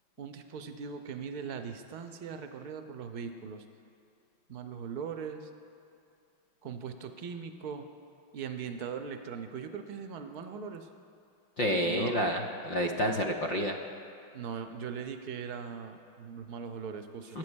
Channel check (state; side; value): late; right; 5.7 ms